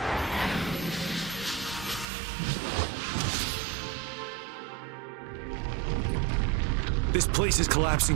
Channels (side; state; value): left; drops out; at 2.1 s